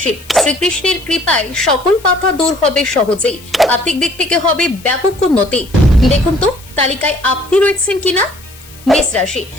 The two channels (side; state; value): left; noise; hiss, 22 dB below the sound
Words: শ্রীকৃষ্ণের কৃপায় সকল বাধা দূর হবে সহজেই। আর্থিক দিক থেকে হবে ব্যাপক উন্নতি। দেখুন তো তালিকায় আপনি রয়েছেন কিনা। মেষ রাশি,